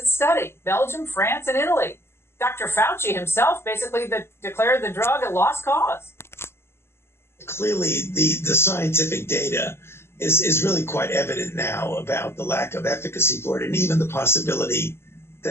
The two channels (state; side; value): late; right; 0.12 ms